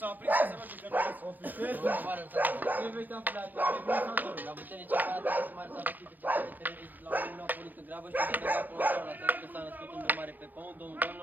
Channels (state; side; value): late; left; 0.085 ms